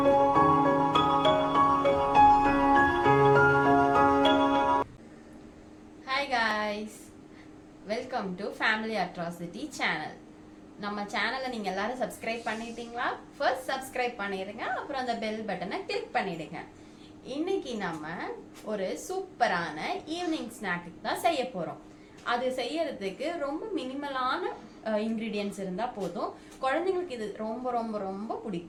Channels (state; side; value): identical; both; correlation 1.00